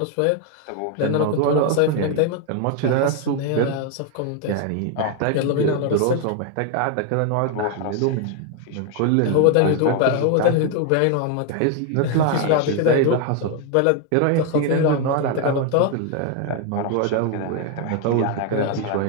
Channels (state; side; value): different; both; correlation 0.01